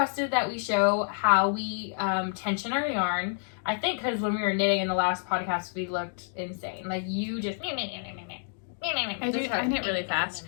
that we show how we tension our yarn. I think because when we were knitting in the last podcast, we looked insane. Like, you just... I knit really fast.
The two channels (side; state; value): right; silent; digital silence